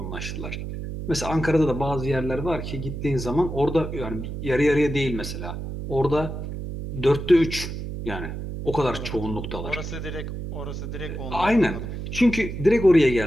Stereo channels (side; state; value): right; noise; hum, 6 dB below the sound